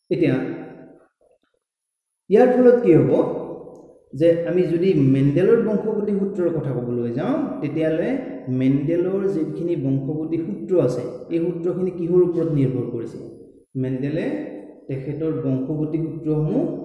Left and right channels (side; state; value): both; identical; correlation 1.00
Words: এতিয়া ইয়াৰ ফলত কি হ'ব যে আমি যদি মেণ্ডেলৰ বংশগতি সূত্ৰৰ কথা ক'বলৈ যাওঁ তেতিয়াহ'লে মেণ্ডেলৰ যিখিনি বংশগতি সূত্ৰ আছে এই সূত্ৰখিনি কিহৰ ওপৰত নিৰ্ভৰ কৰিছে? মেণ্ডেলে তেখেতৰ বংশগতি সূত্ৰসমূহ